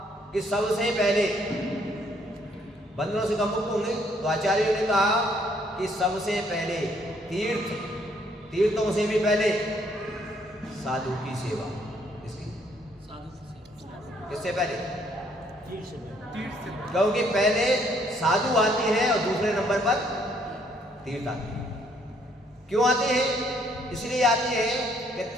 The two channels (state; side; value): normal; both; correlation 0.67